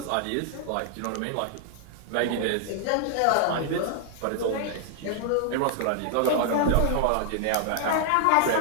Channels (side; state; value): both; different; correlation 0.00